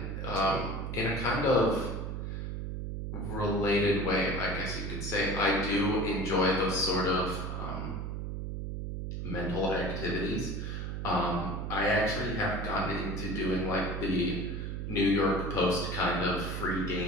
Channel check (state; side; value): noise; right; hum, 4 dB below the sound